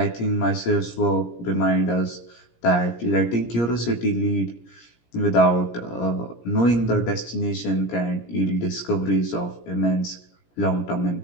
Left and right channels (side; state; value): right; late; 17 ms